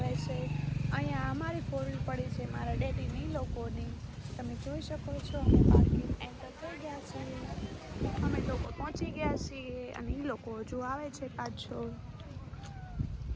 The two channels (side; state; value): both; identical; correlation 1.00